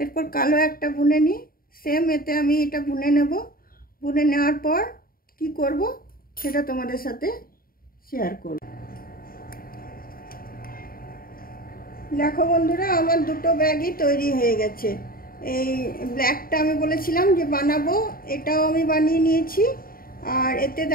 এরপর কালো একটা বুনে নিই, সেম এতে আমি এটা বুনে নেব। বুনে নেওয়ার পর কি করব সেটা তোমাদের সাথে শেয়ার করব। দেখো বন্ধুরা, আমার দুটো ব্যাগই তৈরি হয়ে গেছে। এই ব্ল্যাকটা আমি বলেছিলাম যে বানাবো, এটাও আমি বানিয়ে নিয়েছি। আর এতে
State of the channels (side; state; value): right; late; 0.42 ms